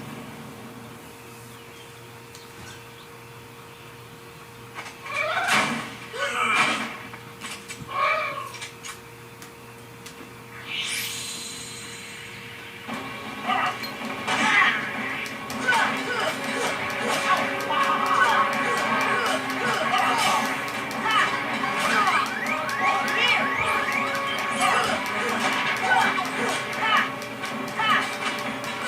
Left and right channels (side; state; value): both; identical; correlation 1.00